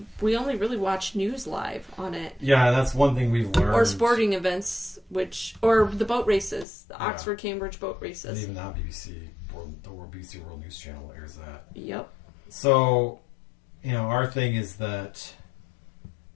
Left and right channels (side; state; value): right; drops out; at 6.7 s